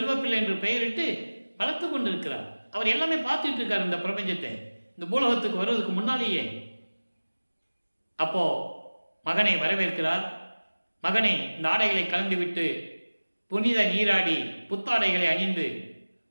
என்று பெயரிட்டு வளர்த்து கொண்டிருக்கிறார். அவர் எல்லாமே பார்த்துட்டு இருக்கார் இந்த பிரபஞ்சத்தை, இந்த பூலோகத்துக்கு வருவதற்கு முன்னாலேயே. அப்போ மகனை வரவேற்கிறார். மகனை இந்த ஆடைகளை கலந்துவிட்டு புனித நீராடி புத்தாடைகளை அணிந்து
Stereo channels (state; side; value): inverted; both; correlation -1.00